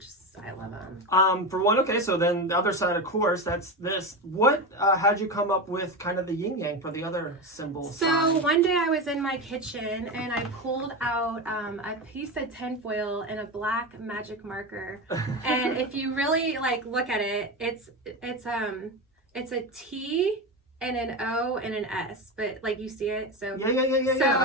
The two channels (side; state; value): both; normal; correlation 0.19